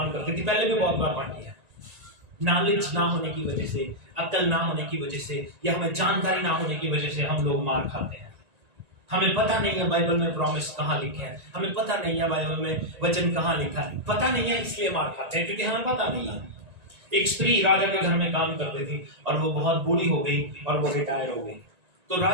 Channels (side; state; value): left; late; 1.9 ms